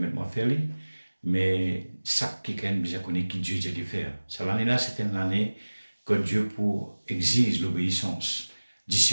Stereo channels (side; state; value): both; inverted; correlation -1.00